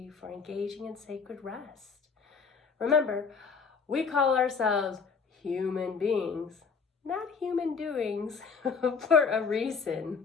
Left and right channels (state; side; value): quieter; right; 5.5 dB